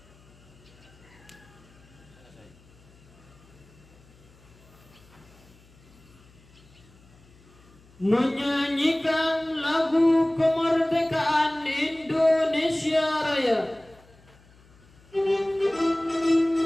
Menyanyikan lagu kemerdekaan Indonesia Raya.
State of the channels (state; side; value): noise; left; hum, 27 dB below the sound